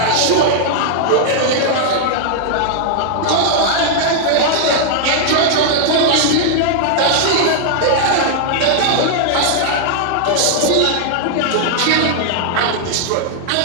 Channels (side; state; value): both; different; correlation -0.01